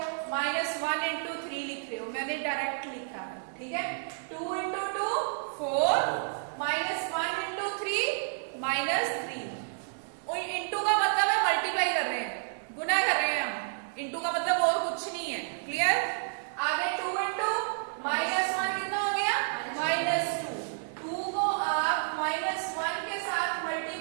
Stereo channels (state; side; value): silent; left; digital silence